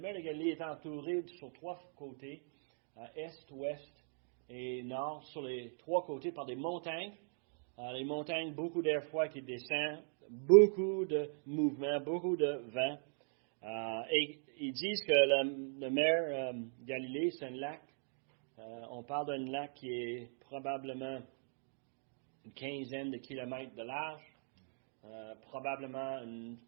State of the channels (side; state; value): left; silent; digital silence